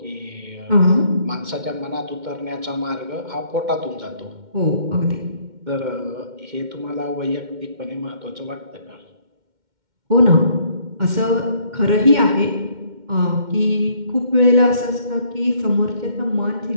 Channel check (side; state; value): left; late; 2.1 ms